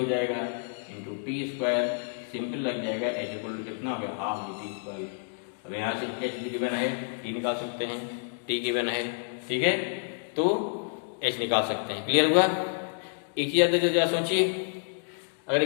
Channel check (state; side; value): silent; right; digital silence